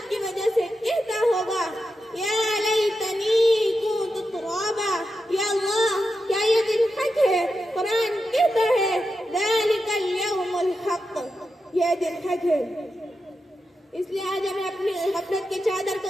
کی وجہ سے کہتا ہوگا یا لیتنی کنت ترابا، یا اللہ کیا یہ دن حق ہے؟ قرآن کہتا ہے ذالک الیوم الحق، یہ دن حق ہے۔ اس لیے آج ہمیں اپنی غفلت کی چادر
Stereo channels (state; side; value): normal; both; correlation 0.89